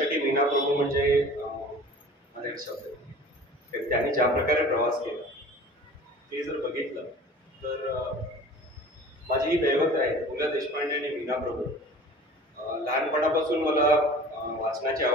मीना प्रभू म्हणजे माझा एक शब्द आहे. त्यांनी ज्या प्रकारे प्रवास केला ते जर बघितलं तर माझी ही दैवत आहे. पु ल देशपांडे आणि मीना प्रभू. लहानपणापासून मला वाचनाची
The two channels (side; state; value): both; normal; correlation 0.43